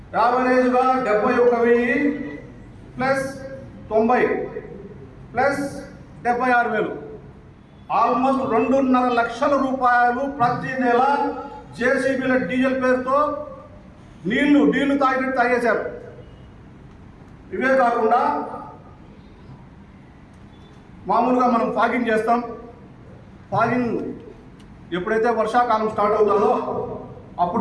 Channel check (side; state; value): both; identical; correlation 1.00